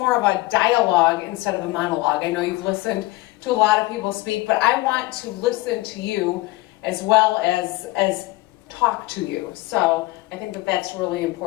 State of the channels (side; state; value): right; quieter; 20.0 dB